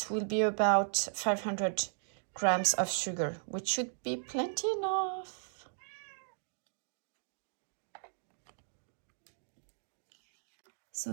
will be about 500 grams of sugar, which should be plenty enough. So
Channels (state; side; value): silent; left; digital silence